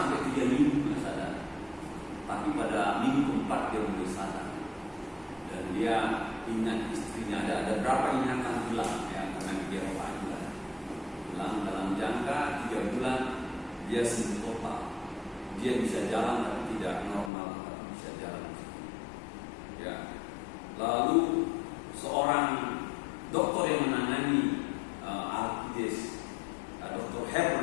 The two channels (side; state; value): right; drops out; at 17.3 s